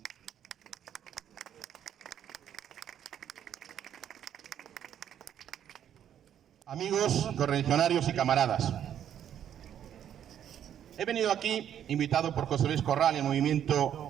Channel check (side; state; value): left; quieter; 9.8 dB